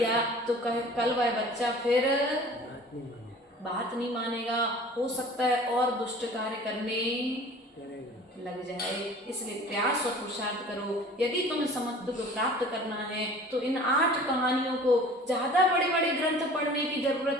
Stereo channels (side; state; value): both; normal; correlation 0.45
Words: तो कल वह बच्चा फिर बात नहीं मानेगा, हो सकता है और दुष्ट कार्य करने लग जाए। इसलिए प्रयास और पुरुषार्थ करो। यदि तुम्हें समत्व को प्राप्त करना है तो इन 8 कहानियों को, ज़्यादा बड़े बड़े ग्रंथ पढ़ने की जरूरत